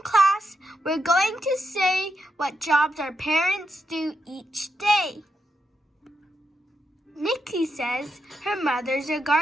class, we're going to say what jobs our parents do each day. Nikki says her mother's a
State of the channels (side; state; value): both; normal; correlation 0.83